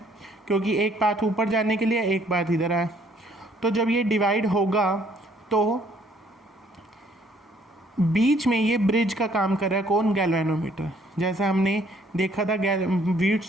क्योंकि एक पाथ ऊपर जाने के लिए एक पाथ इधर आया। तो जब ये डिवाइड होगा तो बीच में ये ब्रिज का काम कर रहा है कौन, गैल्वेनोमीटर। जैसा हमने देखा था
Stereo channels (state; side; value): normal; both; correlation 0.63